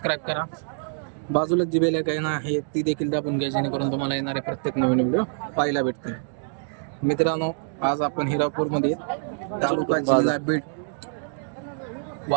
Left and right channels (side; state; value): left; silent; digital silence